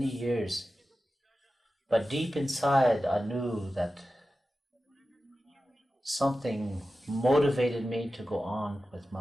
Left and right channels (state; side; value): normal; both; correlation 0.94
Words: years. But deep inside, I knew that something motivated me to go on with